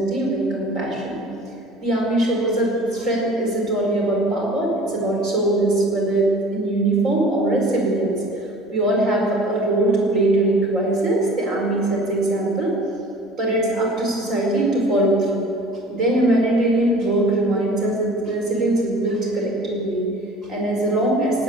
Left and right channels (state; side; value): normal; both; correlation 0.45